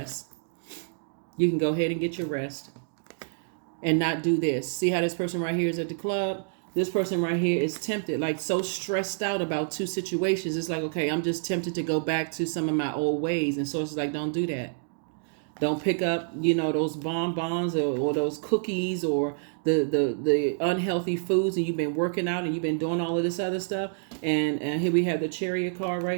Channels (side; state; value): left; silent; digital silence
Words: You can go ahead and get your rest and not do this. See how this person right here is at the club? This person right here is tempted, like so stressed out about two situations. It's like, okay, I'm just tempted to go back to some of my old ways. And Source is like, don't do that. Don't pick up, those bonbons or those cookies or the unhealthy foods, and you've been working out and you've been doing all of this other stuff. And here we have the Chariot card